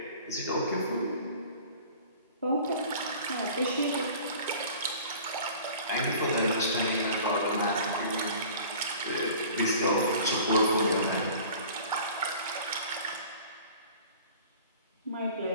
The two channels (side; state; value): both; inverted; correlation -0.45